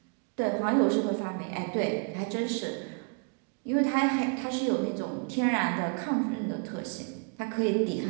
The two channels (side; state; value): left; quieter; 39.2 dB